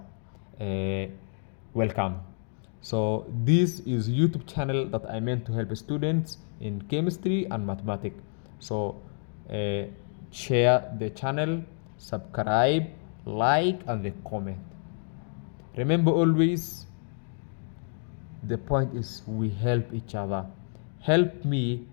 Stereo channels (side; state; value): right; silent; 59 dB below the other